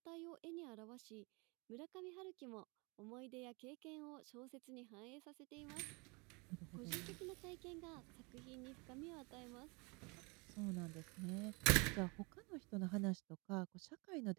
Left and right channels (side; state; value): left; quieter; 29.3 dB